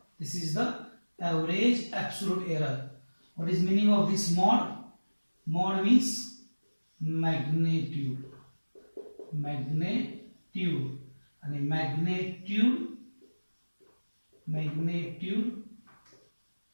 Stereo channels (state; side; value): inverted; both; correlation -1.00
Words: This is the average absolute error. What is meaning of this mod? Mod means magnitude. And magnitude